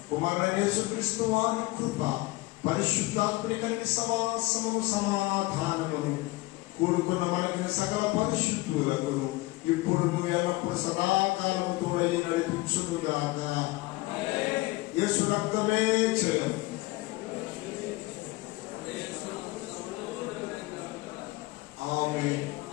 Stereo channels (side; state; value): right; quieter; 20.7 dB